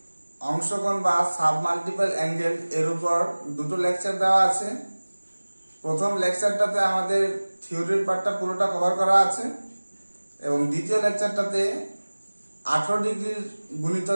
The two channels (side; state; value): both; inverted; correlation -1.00